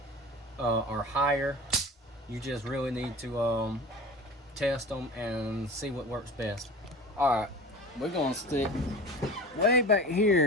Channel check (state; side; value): normal; both; correlation 0.36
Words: or higher. You just really need to test them and see what works best. All right, we're gonna stick way back